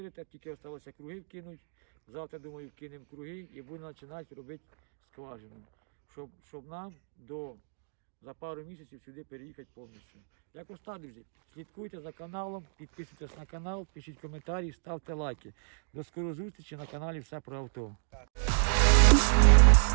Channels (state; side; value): silent; left; digital silence